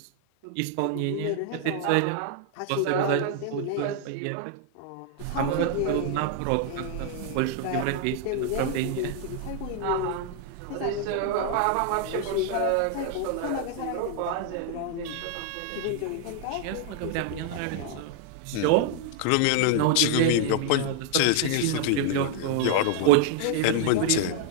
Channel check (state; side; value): different; both; correlation 0.00